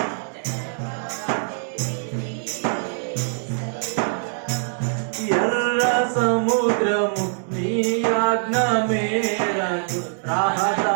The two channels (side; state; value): left; silent; digital silence